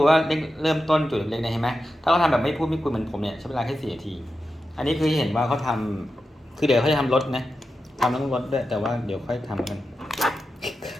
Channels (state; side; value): normal; both; correlation 0.90